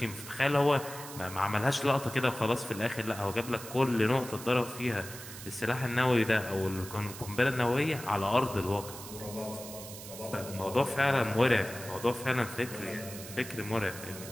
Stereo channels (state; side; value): noise; right; hiss, 13 dB below the sound